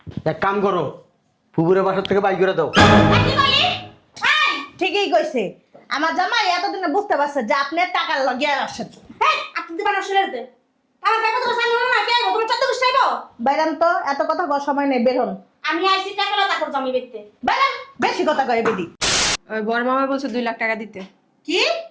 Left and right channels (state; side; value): identical; both; correlation 1.00